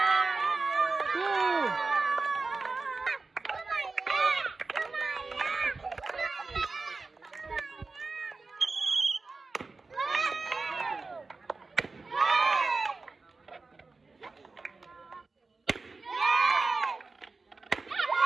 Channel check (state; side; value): quieter; left; 3.9 dB